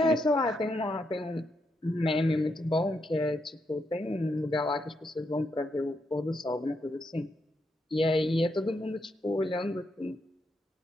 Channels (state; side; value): normal; both; correlation 0.81